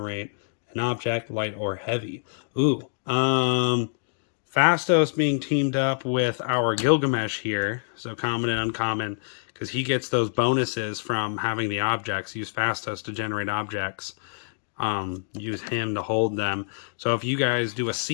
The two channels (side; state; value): right; silent; digital silence